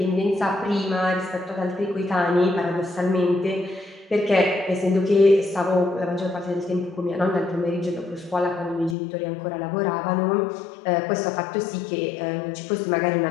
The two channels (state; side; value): drops out; right; at 9.0 s